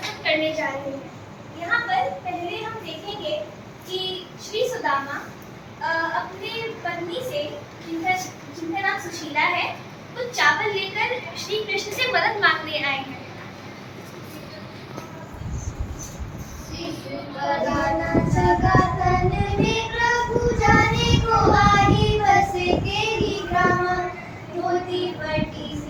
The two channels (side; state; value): both; identical; correlation 1.00